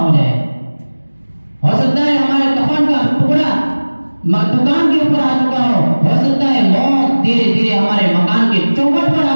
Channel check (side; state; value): both; inverted; correlation -1.00